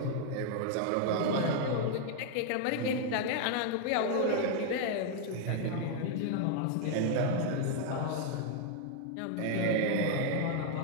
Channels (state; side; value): different; both; correlation 0.00